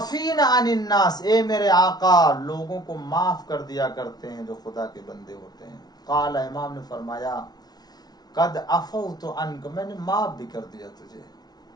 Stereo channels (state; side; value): late; right; 0.19 ms